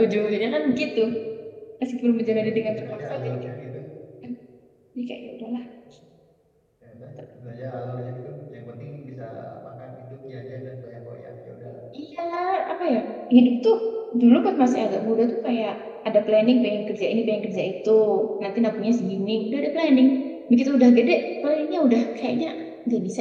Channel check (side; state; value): both; identical; correlation 1.00